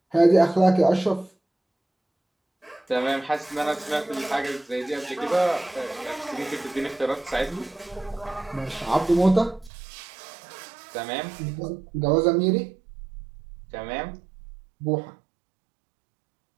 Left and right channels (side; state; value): left; drops out; at 9.7 s